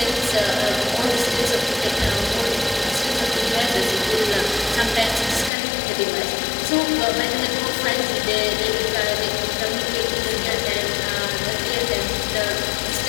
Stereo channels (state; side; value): drops out; right; at 5.5 s